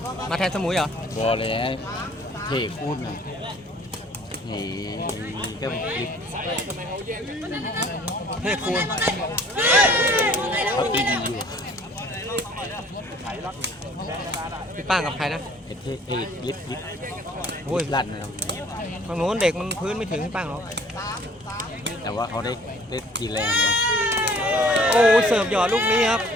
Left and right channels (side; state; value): both; normal; correlation 0.55